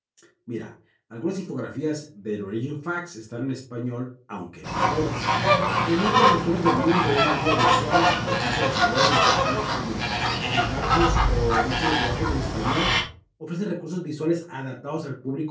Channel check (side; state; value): both; identical; correlation 1.00